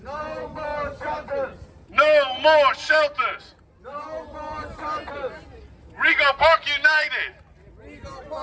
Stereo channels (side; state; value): both; identical; correlation 1.00